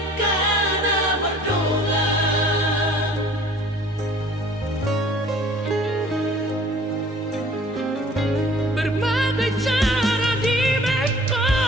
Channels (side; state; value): both; normal; correlation 0.51